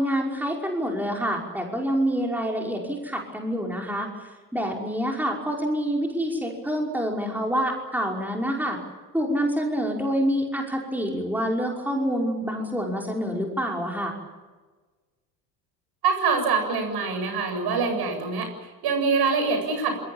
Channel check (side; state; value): both; normal; correlation 0.49